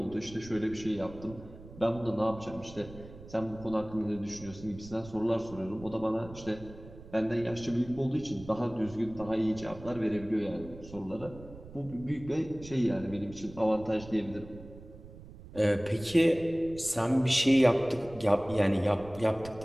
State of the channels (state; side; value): noise; right; rumble, 17 dB below the sound